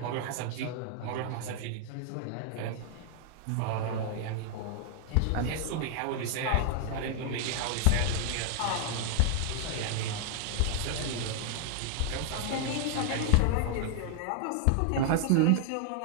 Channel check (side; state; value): both; different; correlation 0.00